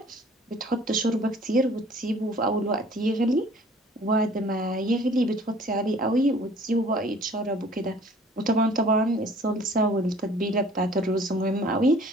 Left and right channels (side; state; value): both; normal; correlation 0.52